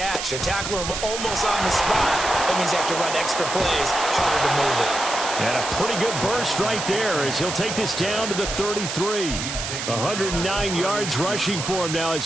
They're tackling them almost on the spot. That means they have to run extra plays, harder to move it. And a pretty good burst right there as he'll take this down to the 33. 109 yards rushing for him now as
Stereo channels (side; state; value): right; noise; hiss, 5 dB below the sound